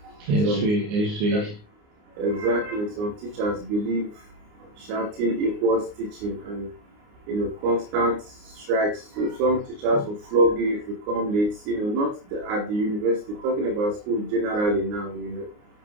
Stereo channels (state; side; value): late; left; 29 ms